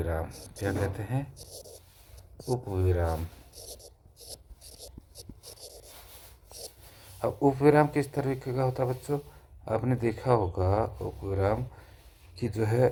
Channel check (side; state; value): both; identical; correlation 1.00